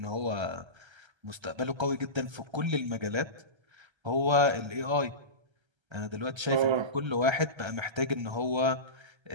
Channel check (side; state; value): left; late; 1.3 ms